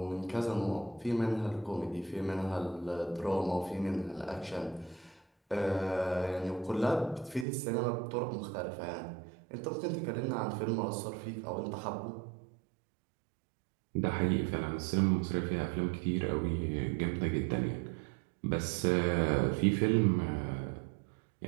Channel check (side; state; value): left; drops out; at 7.5 s